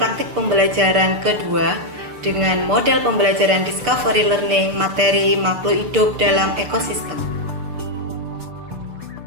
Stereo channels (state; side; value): late; left; 6.7 ms